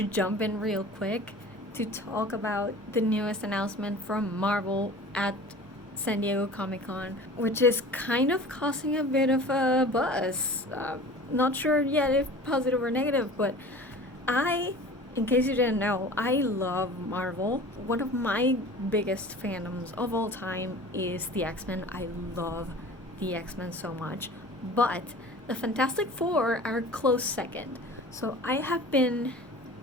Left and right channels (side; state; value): both; normal; correlation 0.41